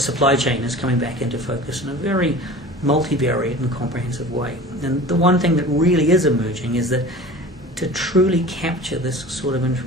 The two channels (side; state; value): both; normal; correlation 0.39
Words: chain is coming back into focus in a very multivariate and comprehensive way. And the one thing that really is emerging is that to truly capture this sort of